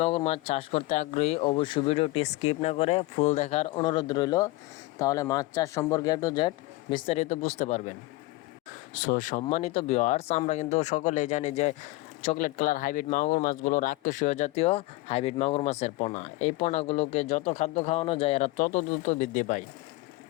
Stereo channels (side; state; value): right; quieter; 20.3 dB